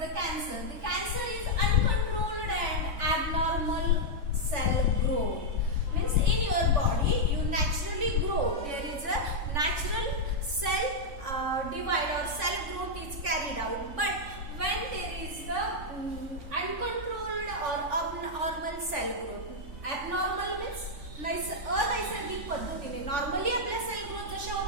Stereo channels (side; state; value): left; late; 3.5 ms